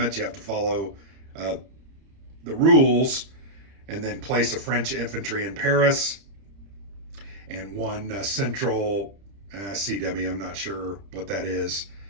You have to follow the rules. And then place a French infantry in Paris and one central CW, I'm not sure what that is,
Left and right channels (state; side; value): late; left; 30 ms